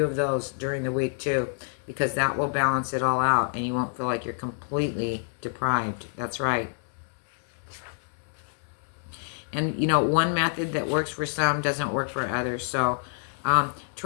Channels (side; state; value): right; silent; 60 dB below the other